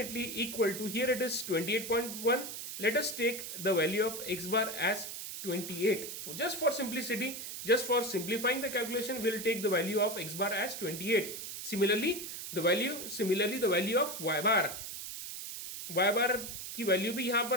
equal to, here it is 28.1. Let us take the value of x bar as 28. Just for simplicity, just for simplifying the calculation, we'll take the value of x bar as 28. Similarly the value of y bar की value भी यहाँ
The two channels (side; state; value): right; noise; hiss, 8 dB below the sound